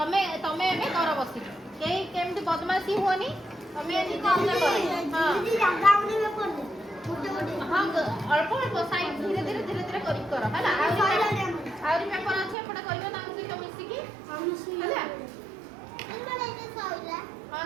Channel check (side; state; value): left; drops out; at 12.6 s